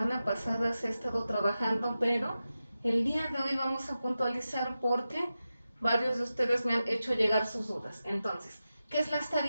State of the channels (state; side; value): inverted; both; correlation -0.92